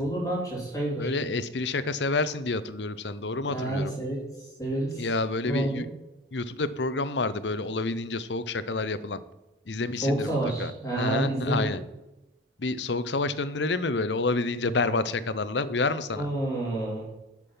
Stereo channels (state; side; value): normal; both; correlation 0.30